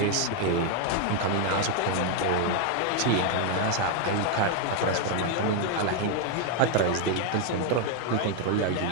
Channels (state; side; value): different; both; correlation 0.01